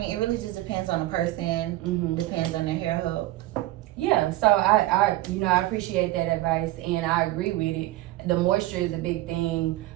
it really just depends on the person, depends on their hair health. Yeah, so I appreciate that advice, and I agree with it. The moisture is a big thing.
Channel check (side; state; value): left; quieter; 16.6 dB